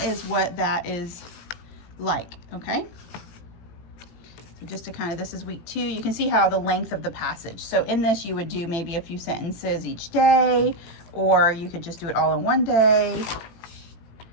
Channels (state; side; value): late; right; 18 ms